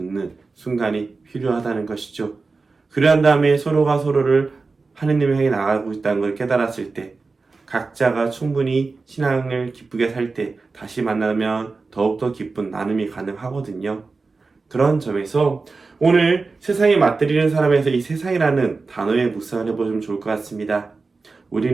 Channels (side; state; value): left; quieter; 4.1 dB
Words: 순간이 필요하다는 것이죠. 그러한 다음에 서로가 서로를 하느님을 향해 나아가고 있다는 걸 깨달았을 때, 각자가 충분히 신앙을 기쁘게 살 때 다시 만나면 더욱더 기쁜 나눔이 가능하거든요. 그런 점에서 오늘 세상에 맞들이는 사람에서 이 세상이라는 단어에 묵상을 해보시면 좋을 것 같습니다.